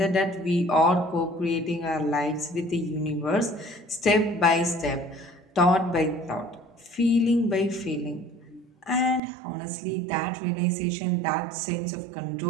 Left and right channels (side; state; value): left; drops out; at 9.2 s